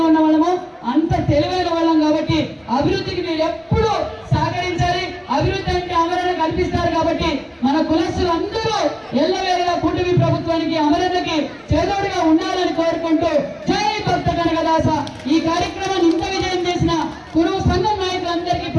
ఉన్న వాళ్ళమో అంత తెలివైన వాళ్ళం కాబట్టి అభివృద్ధికి మీరు ఎప్పుడు సహకరించాలి. అభివృద్ధి అంటే అమరణ కల్పిస్తారు కాబట్టి మన కులస్తులు అందరూ ఎల్లవేళలా కూటమి ప్రభుత్వానికి, అమరణకి చేదోడుగా ఉండాలని కోరుకుంటూ జై భక్త కనకదాస. ఈ కార్యక్రమాన్ని ఇంత విజయం చేసిన కురువు సంఘం నాయకులందరికీ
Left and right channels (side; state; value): both; identical; correlation 1.00